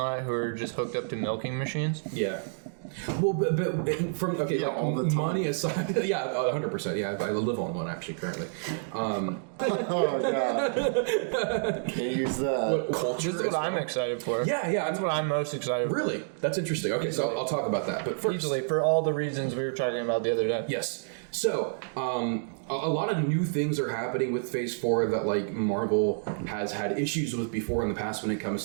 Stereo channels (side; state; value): left; silent; digital silence